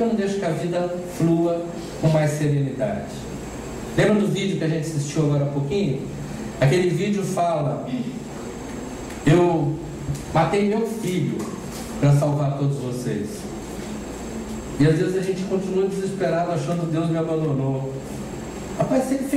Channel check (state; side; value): identical; both; correlation 1.00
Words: não deixo que a vida flua com mais serenidade? Lembra do vídeo que a gente assistiu agora há pouquinho? Aquele vídeo fala: eu matei meu filho para salvar todos vocês. E às vezes a gente continua desesperado achando que Deus me abandonou. Rapaz, se ele